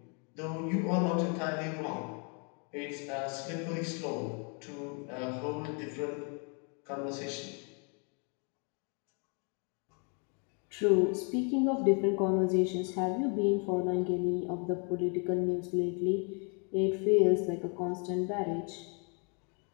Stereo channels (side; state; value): right; quieter; 37.0 dB